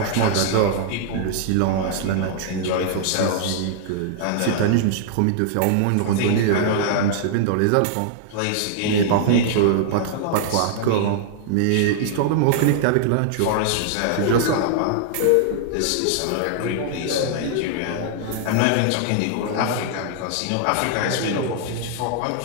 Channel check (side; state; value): both; different; correlation -0.01